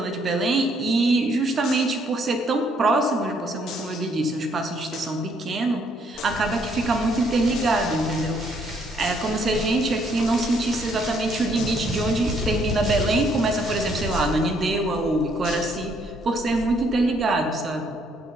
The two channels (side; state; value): both; normal; correlation 0.68